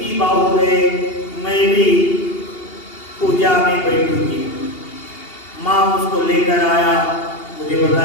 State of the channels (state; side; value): late; right; 2.8 ms